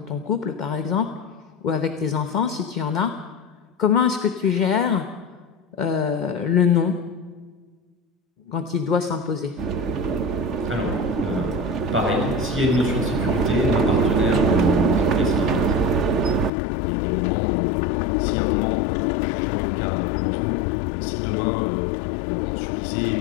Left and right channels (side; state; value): right; drops out; at 16.5 s